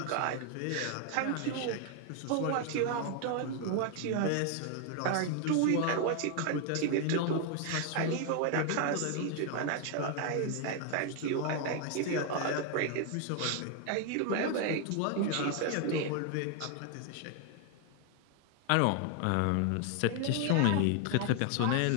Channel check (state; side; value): different; both; correlation 0.00